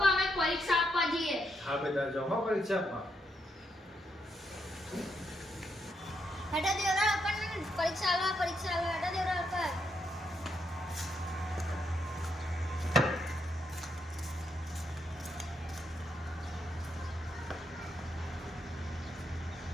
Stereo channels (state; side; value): normal; both; correlation 0.79